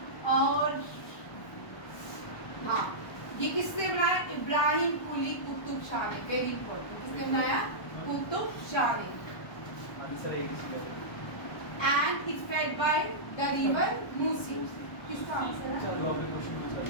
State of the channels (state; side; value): late; right; 1.1 ms